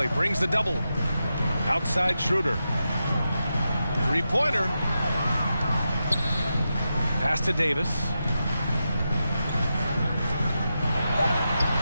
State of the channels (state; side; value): inverted; both; correlation -0.89